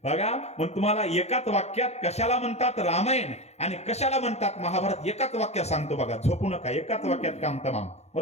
बघा, मग तुम्हाला एकाच वाक्यात कशाला म्हणतात रामायण आणि कशाला म्हणतात महाभारत एकाच वाक्यात सांगतो बघा. झोपू नका, एकाच वाक्यात काम तमाम,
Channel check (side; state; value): right; late; 0.31 ms